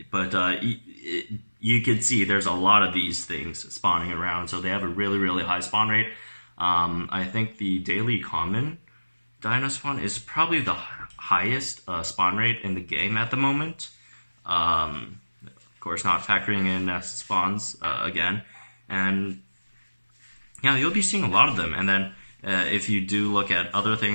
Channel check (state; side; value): inverted; both; correlation -1.00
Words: But you can see there's a lot of these things spawning around, so they have a really, really high spawn rate. I think the daily common dino spawn is probably the highest spawn rate in the game at the moment. Of course, not factoring in nest spawns again, and yeah, you'll be seeing a lot of them. And then if you do look at other